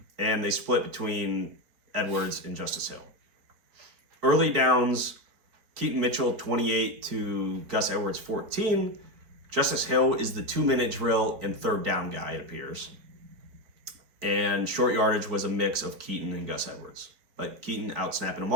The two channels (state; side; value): late; left; 4.2 ms